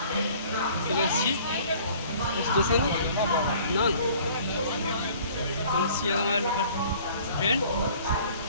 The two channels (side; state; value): both; inverted; correlation -0.52